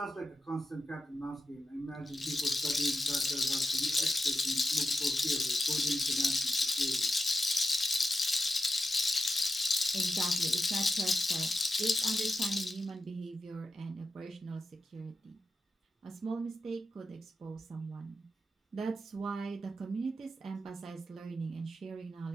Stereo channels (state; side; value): normal; both; correlation 0.90